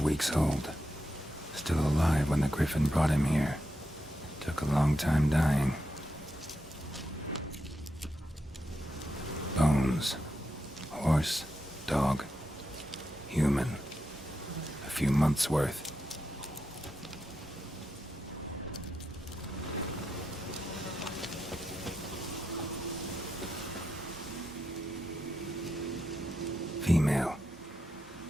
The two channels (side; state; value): both; normal; correlation 0.86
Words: weeks old. Still alive when the Griffin brought him here. Took a long time dying. Bones. Horse, dog, human. A few months' worth. Female.